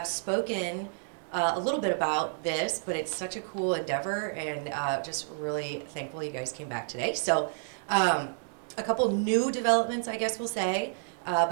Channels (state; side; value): silent; left; digital silence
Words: spoken a little bit about this, but it's such a cool endeavor, and just really thankful you guys came back today. So a couple new developments, I guess we'll say,